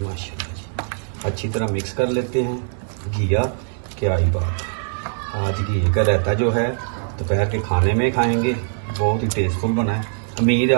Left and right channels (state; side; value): silent; left; 64 dB below the other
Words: माशाल्लाह जी। अच्छी तरह मिक्स कर लेते हैं। घिया क्या ही बात है। आज घी का रायता जो है दोपहर के खाने में खाएंगे, बहुत ही टेस्टफुल बना है। उम्मीद है